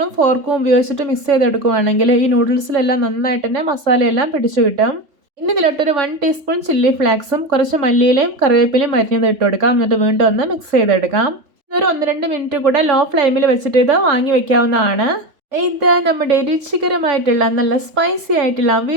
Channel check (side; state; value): left; late; 3.5 ms